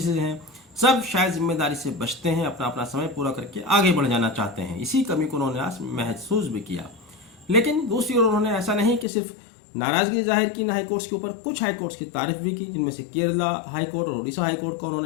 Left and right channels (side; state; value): right; drops out; at 9.1 s